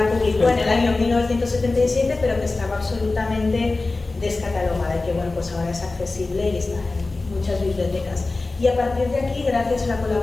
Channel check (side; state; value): right; quieter; 3.4 dB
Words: publicó en el año 1977, pero que estaba absolutamente descatalogada y que bueno, pues ahora es accesible y está en muchas bibliotecas. Y a partir de aquí, gracias a la